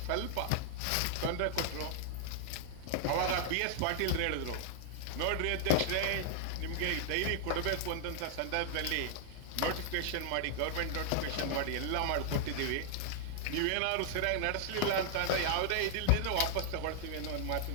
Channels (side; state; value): both; different; correlation 0.00